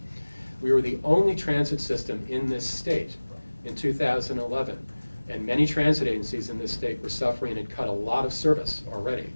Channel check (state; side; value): inverted; both; correlation -1.00